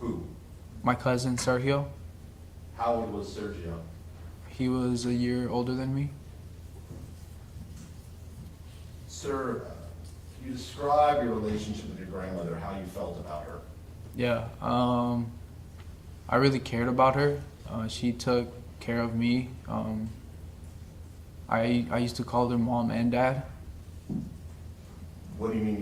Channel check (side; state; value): both; identical; correlation 1.00